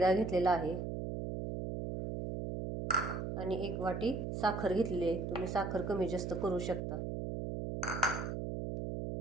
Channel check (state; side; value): noise; right; hum, 4 dB below the sound